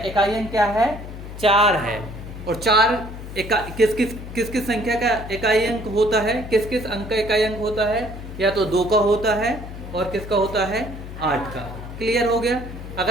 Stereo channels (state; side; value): noise; left; hum, 11 dB below the sound